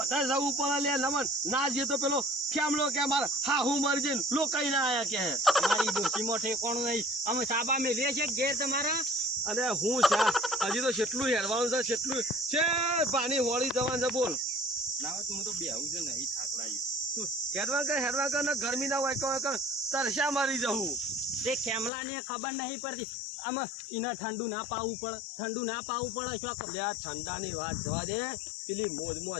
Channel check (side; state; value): right; drops out; at 21.9 s